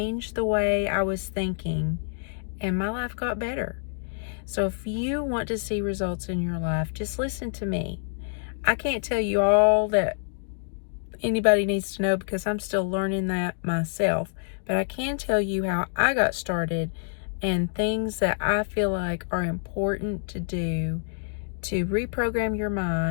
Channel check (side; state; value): right; silent; digital silence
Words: the way I was thinking, and my life got better. So if you want to see results in your life, just listen to me. I can't tell you all that anybody needs to know because I'm still learning that myself, but I can tell you how I got started and things that I feel like are important to do to reprogram your